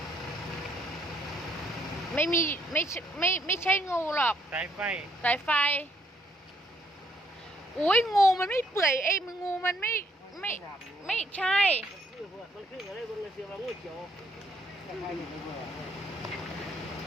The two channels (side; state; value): both; normal; correlation 0.70